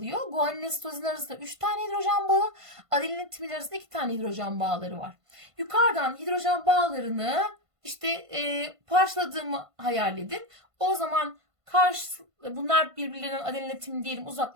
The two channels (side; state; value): left; late; 1.5 ms